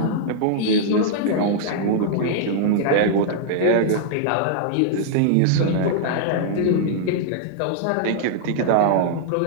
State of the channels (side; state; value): both; different; correlation -0.01